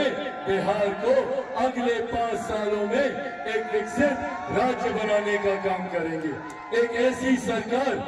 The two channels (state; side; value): identical; both; correlation 1.00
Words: बिहार को अगले 5 सालों में एक विकसित राज्य बनाने का काम करेंगे। एक ऐसी सरकार